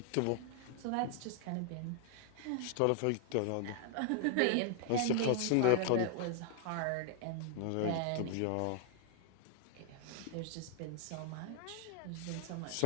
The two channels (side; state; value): both; different; correlation 0.00